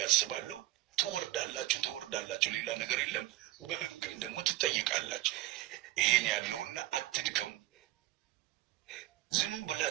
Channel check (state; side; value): quieter; left; 16.8 dB